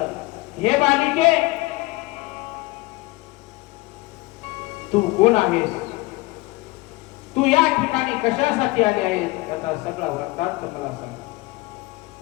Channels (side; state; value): right; quieter; 21.4 dB